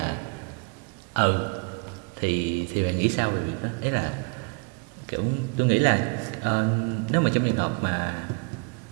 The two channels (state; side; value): quieter; left; 34.2 dB